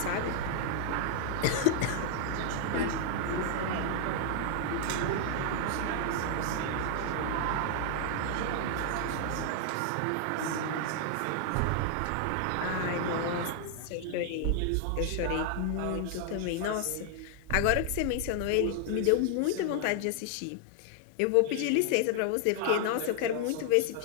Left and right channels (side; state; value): both; different; correlation 0.00